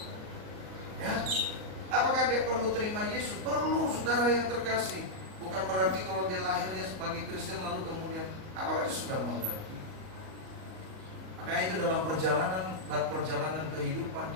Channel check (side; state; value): left; late; 38 ms